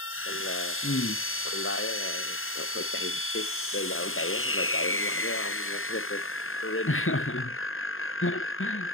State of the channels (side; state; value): right; late; 0.60 ms